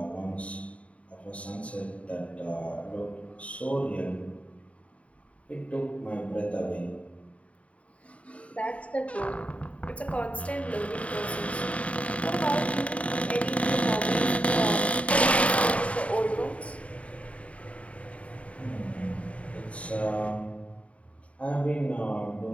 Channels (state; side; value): late; right; 0.065 ms